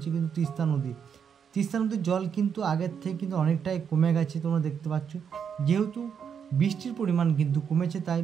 কিন্তু তিস্তা নদী। তিস্তা নদীর জল কিন্তু আগের থেকে কিন্তু অনেকটাই কমে গেছে, তোমরা দেখতে পাচ্ছ। যেহেতু বৃষ্টির পরিমাণ কিন্তু কমেছে, তাই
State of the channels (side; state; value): left; quieter; 7.3 dB